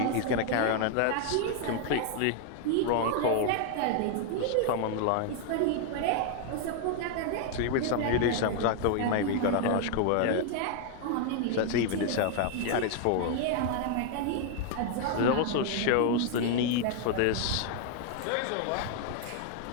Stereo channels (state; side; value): different; both; correlation 0.00